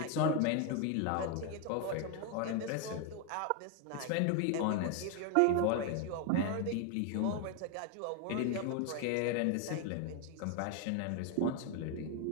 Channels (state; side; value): different; both; correlation 0.01